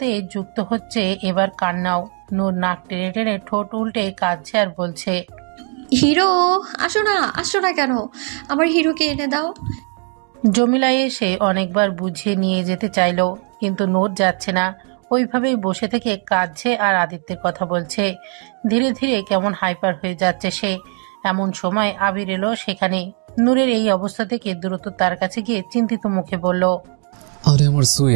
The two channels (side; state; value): left; quieter; 39.0 dB